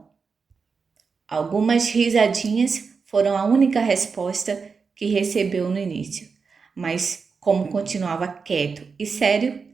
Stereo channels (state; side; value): quieter; left; 5.2 dB